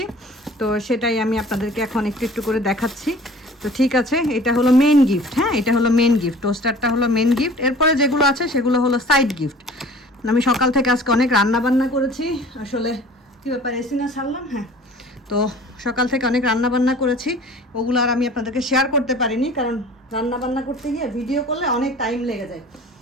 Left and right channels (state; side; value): normal; both; correlation 0.46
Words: তো সেটাই আমি আপনাদেরকে এখন একটু একটু করে দেখাচ্ছি। তো ঠিক আছে, এটা হলো মেন গিফট। হ্যাঁ, এটা হলো মেন গিফট, টোস্টারটা হলো মেন গিফট। এরপরে যেগুলো আছে সেগুলো হলো সাইড গিফট। আমি সকাল থেকে আজকে অনেক রান্না বান্না করেছি। আসলে কী ব্যাপার, এসি না ছাড়লাম? হ্যাঁ, তো সকাল থেকে অনেক রান্না বান্না করেছি, ওগুলো আর আমি আপনাদেরকে শেয়ার করতে পারিনি, কারণ রান্না বান্না করতে গিয়ে ভিডিও করলে অনেক টাইম লেগে যায়।